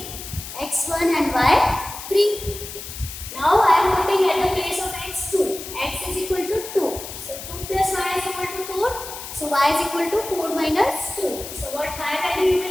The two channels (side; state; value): left; noise; hiss, 10 dB below the sound